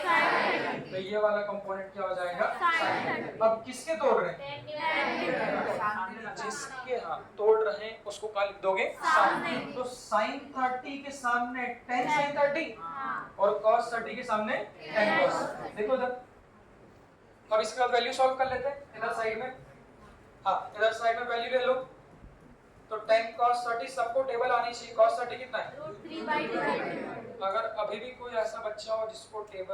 तो ये वाला कंपोनेंट क्या हो जाएगा? sin। अब किसके तोड़ रहे हैं? जिसके तोड़ रहे हैं उसको क्या लिख दोगे? sin। तो sin 30 के सामने tan sin 30 और cos 30 के सामने tan cos। देखो इधर। अब इसके बाद वैल्यू सॉल्व कर लेते हैं इधर साइड में। इधर साइड में वैल्यू ले लो। तो tan cos 30 सबको टेबल आनी चाहिए। cos 30 कितना है? √3/2। अगर अभी भी कोई ऐसा बच्चा हो जिसको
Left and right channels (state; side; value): identical; both; correlation 1.00